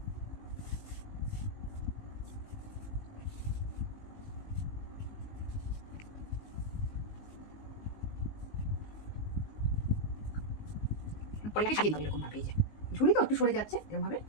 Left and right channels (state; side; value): late; right; 19 ms